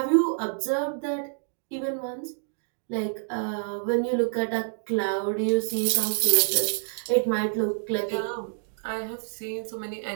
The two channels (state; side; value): silent; left; digital silence